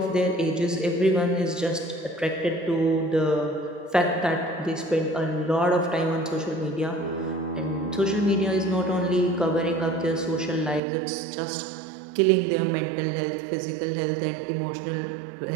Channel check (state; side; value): drops out; left; at 10.8 s